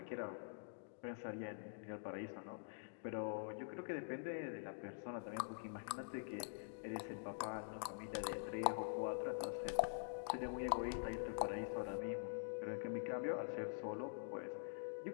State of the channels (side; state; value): right; silent; digital silence